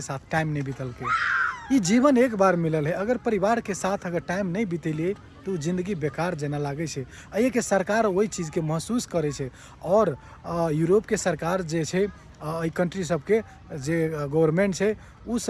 साथ टाइम नहीं बीतल के। ये जीवन एक बार मिलल है, अगर परिवार के साथ अगर टाइम नहीं बीतेलिए तो जिंदगी बेकार जना लागे छे। ये के सरकार वही चीज़ के महसूस करे छे। और यूरोप के सरकार जे छे, ई कंट्री सबके जे गवर्नमेंट छे उ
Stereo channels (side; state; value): both; identical; correlation 1.00